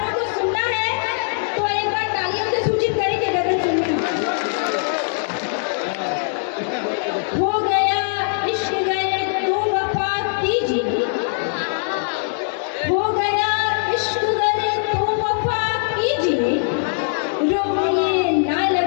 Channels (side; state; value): right; silent; 65 dB below the other